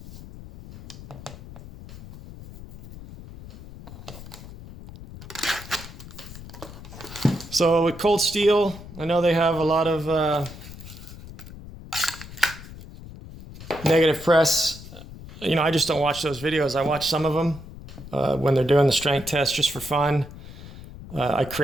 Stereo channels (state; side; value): noise; left; rumble, 15 dB below the sound